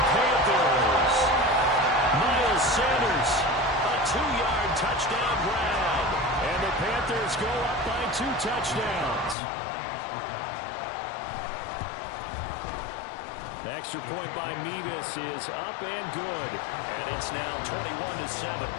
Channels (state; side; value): drops out; right; at 9.3 s